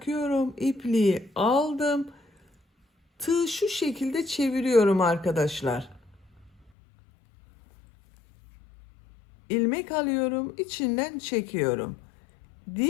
İpliği aldım. Tığı şu şekilde çeviriyorum arkadaşlar. İlmek alıyorum, içinden çekiyorum.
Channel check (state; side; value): drops out; right; at 6.7 s